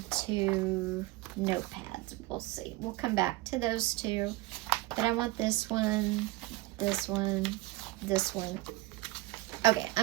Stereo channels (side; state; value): left; quieter; 18.8 dB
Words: notepads. We'll see. We'll come back to those two. But I want this one, this one, this one. Okay,